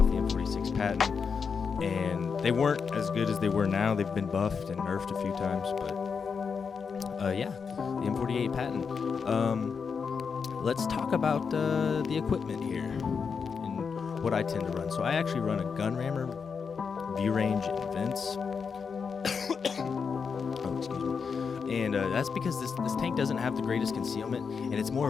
the M46 Patton, and they weren't as good as they were now. They've been buffed and nerfed a few times, but yeah, the M48 Patton. Let's talk about the equipment here and what I tend to run. So I actually run a gun rammer, view range, and vents. Oh, excuse me. And that's because this tank doesn't have the greatest concealment, and it's more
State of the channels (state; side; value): quieter; right; 5.8 dB